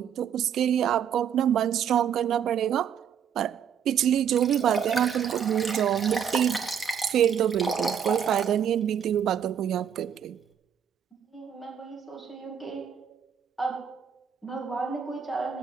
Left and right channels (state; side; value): quieter; left; 8.3 dB